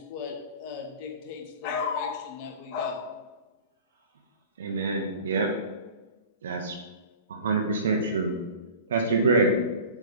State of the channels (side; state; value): both; inverted; correlation -0.40